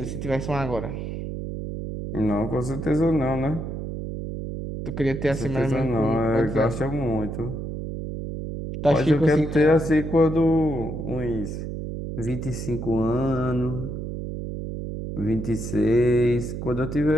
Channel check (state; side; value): noise; right; hum, 6 dB below the sound